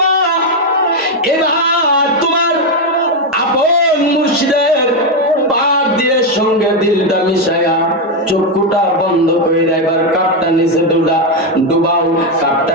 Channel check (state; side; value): normal; both; correlation 0.05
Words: এবার তোমার আপন মুর্শিদের পাক দিয়ে সঙ্গে দিলটা মিশায়া চক্ষুটা বন্ধ করে এবার কাপটা নিচে ডুবাও, কাপটা